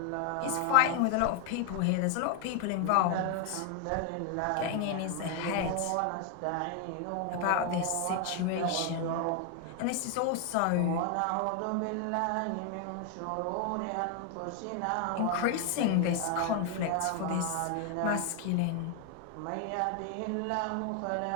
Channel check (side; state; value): both; different; correlation 0.01